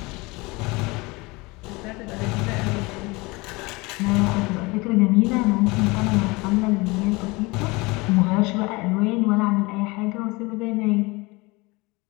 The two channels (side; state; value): right; quieter; 24.4 dB